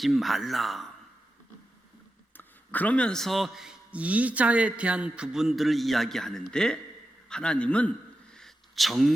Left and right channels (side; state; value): both; normal; correlation 0.90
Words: 말라. 그러면서 이자에 대한 부분들을 이야기하는데 하나님은